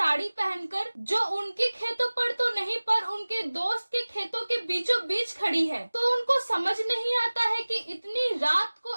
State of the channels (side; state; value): both; inverted; correlation -1.00